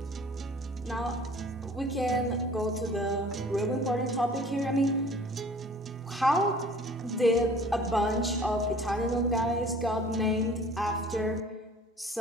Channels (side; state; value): both; normal; correlation 0.49